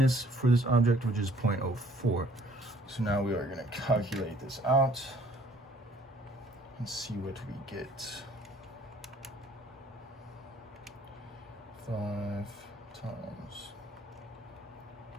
for this object, which is 0.04. So now we are going to calculate this out and see what we get. 5 times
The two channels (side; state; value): both; normal; correlation 0.59